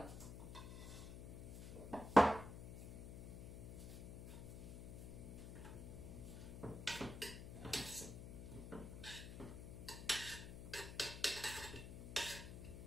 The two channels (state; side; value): noise; left; hum, 9 dB below the sound